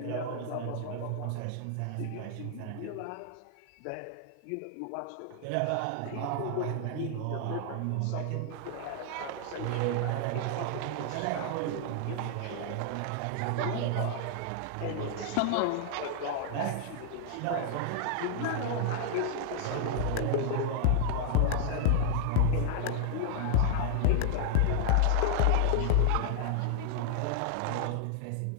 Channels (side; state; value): both; different; correlation -0.01